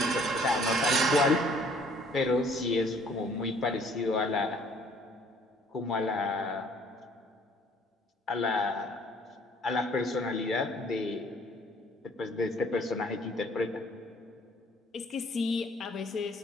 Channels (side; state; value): both; normal; correlation 0.58